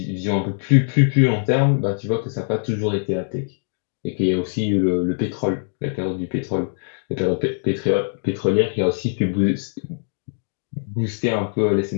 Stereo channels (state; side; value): silent; right; digital silence